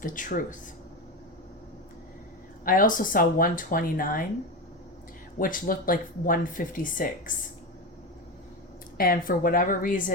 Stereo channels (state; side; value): normal; both; correlation 0.19